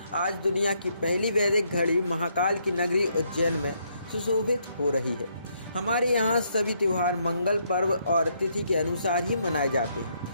आज दुनिया की पहली वैदिक घड़ी महाकाल की नगरी उज्जैन में सुशोभित हो रही है। हमारे यहाँ सभी त्योहार मंगल पर्व और तिथि के अनुसार ही मनाए जाते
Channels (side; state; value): both; inverted; correlation -0.74